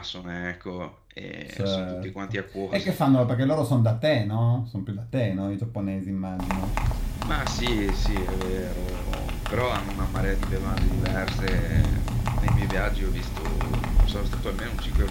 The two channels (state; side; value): identical; both; correlation 1.00